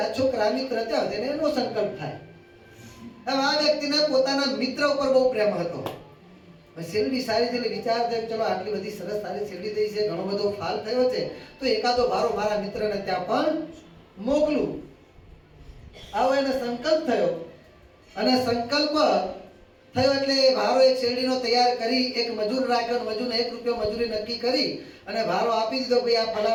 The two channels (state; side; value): identical; both; correlation 1.00